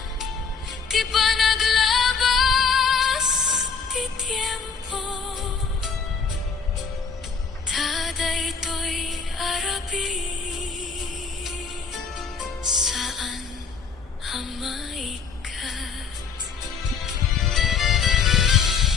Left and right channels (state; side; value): quieter; right; 5.5 dB